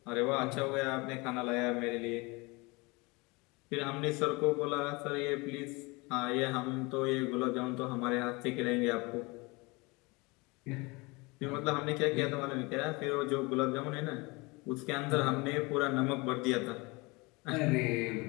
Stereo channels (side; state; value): right; quieter; 25.9 dB